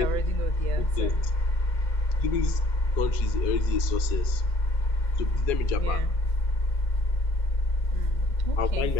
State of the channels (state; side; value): late; right; 2.1 ms